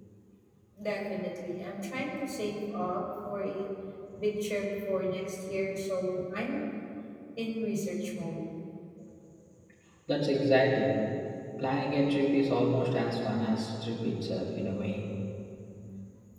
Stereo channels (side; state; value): both; identical; correlation 1.00